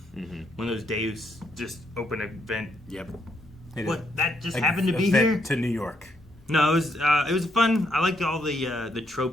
one of those Deus just open a vent. Yep. What? That just happened to be here? To New York. No, it was fun. I liked all the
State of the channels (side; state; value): both; normal; correlation 0.75